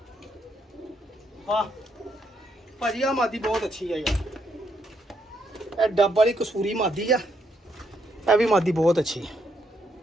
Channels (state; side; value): normal; both; correlation 0.75